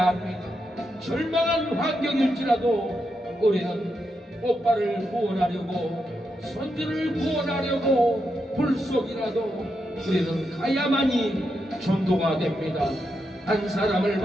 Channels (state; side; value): normal; both; correlation 0.84